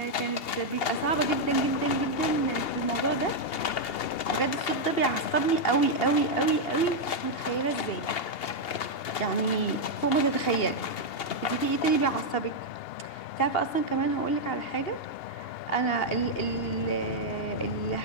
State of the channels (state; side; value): late; right; 2.8 ms